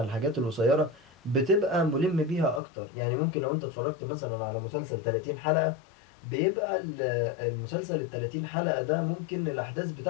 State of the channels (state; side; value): drops out; right; at 2.6 s